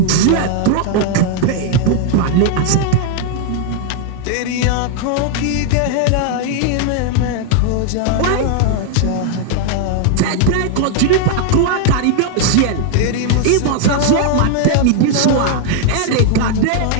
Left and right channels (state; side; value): different; both; correlation 0.00